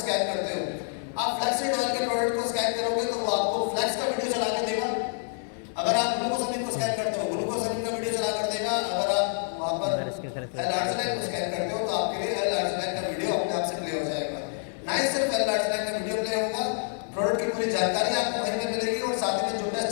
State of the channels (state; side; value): silent; right; 60 dB below the other